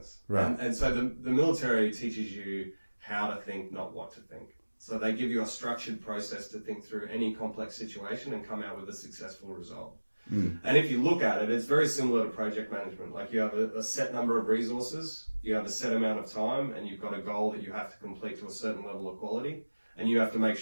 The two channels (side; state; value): both; inverted; correlation -1.00